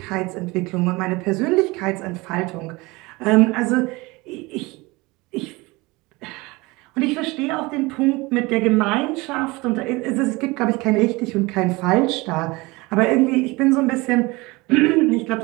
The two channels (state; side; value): quieter; left; 23.3 dB